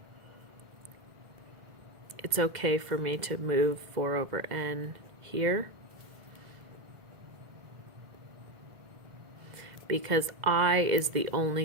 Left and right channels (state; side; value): late; left; 2.1 ms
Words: it's okay for me to move 4 over n here, because I is the